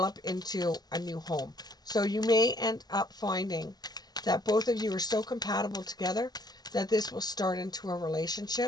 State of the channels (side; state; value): right; late; 0.20 ms